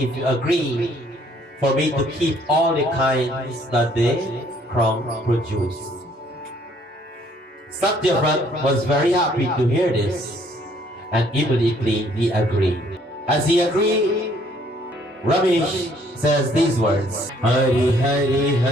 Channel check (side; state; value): both; normal; correlation 0.63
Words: if you agree for me to keep all the kinds that the crown produced. Satyavrat was very happy to hear this and immediately he agreed. As he agreed, Ramesh says these words, Hari Hari